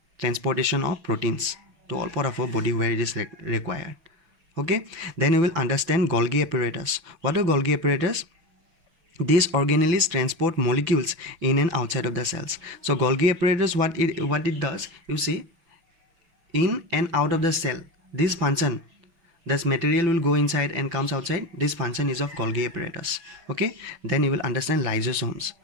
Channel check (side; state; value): left; late; 6.1 ms